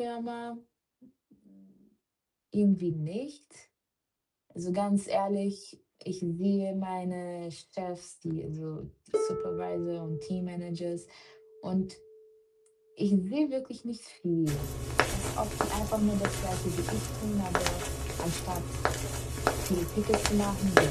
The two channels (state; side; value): identical; both; correlation 1.00